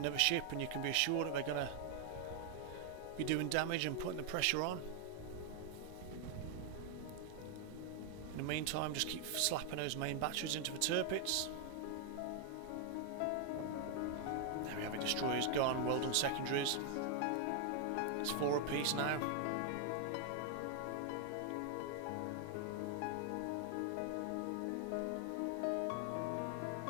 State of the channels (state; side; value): different; both; correlation 0.00